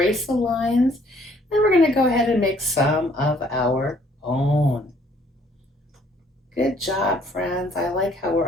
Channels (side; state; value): both; normal; correlation 0.62